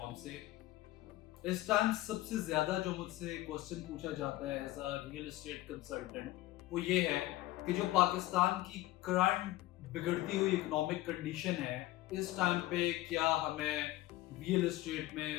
से। इस टाइम सबसे ज्यादा जो मुझसे क्वेश्चन पूछा जाता है as a real estate consultant वो ये है कि जो पाकिस्तान की करंट बिगड़ती हुई इकोनॉमिक कंडीशन है, इस टाइम पे क्या हमें रियल एस्टेट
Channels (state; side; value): quieter; right; 16.7 dB